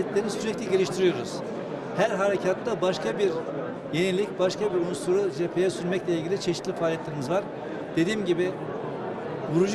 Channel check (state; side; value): identical; both; correlation 1.00